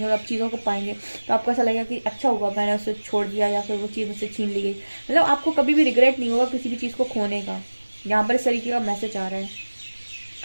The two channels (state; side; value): inverted; both; correlation -1.00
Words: और आप चीज़ों को पाएंगे तो आपको ऐसा लगेगा कि अच्छा हुआ मैंने उससे छोड़ दिया या फिर वो चीज़ मुझसे छीन ली गई। मतलब आपको कभी भी रिग्रेट नहीं होगा किसी भी चीज़ को खोने का। यहाँ पर इस तरीके का मैसेज आ रहा है।